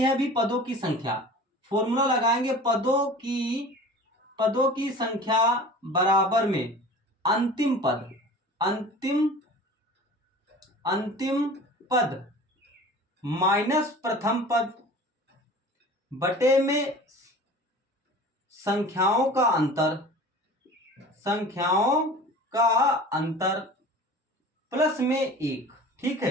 अभी पदों की संख्या, फॉर्मूला लगाएंगे, पदों की संख्या बराबर में अंतिम पद माइनस प्रथम पद बटे में संख्याओं का अंतर प्लस में 1। ठीक है,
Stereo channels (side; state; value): both; normal; correlation 0.40